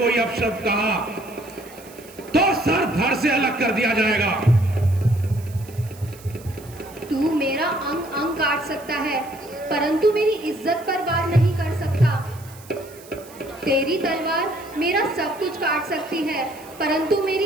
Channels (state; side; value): noise; right; hiss, 21 dB below the sound